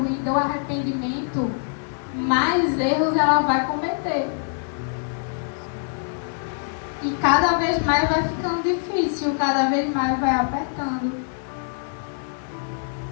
e do arrependimento, mais erros ela vai cometer. E cada vez mais vai ficando difícil, cada vez mais vai apertando.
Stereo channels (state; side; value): silent; right; digital silence